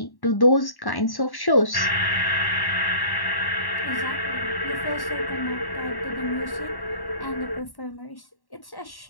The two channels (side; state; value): right; late; 1.1 ms